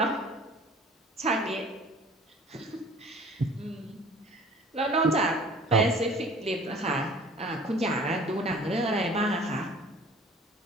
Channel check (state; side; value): normal; both; correlation 0.47